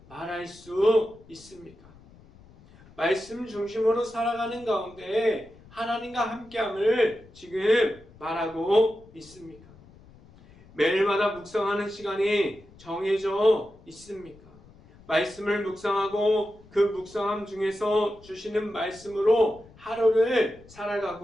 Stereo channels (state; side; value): noise; left; rumble, 24 dB below the sound